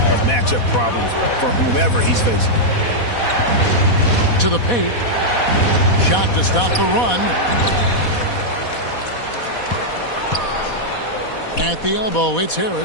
of matchup problems for whomever he's facing. To the paint. Shot to stop the run. At the elbow, it's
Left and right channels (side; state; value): right; late; 4.1 ms